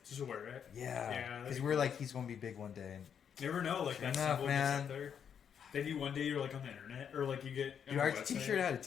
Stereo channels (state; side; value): quieter; right; 7.9 dB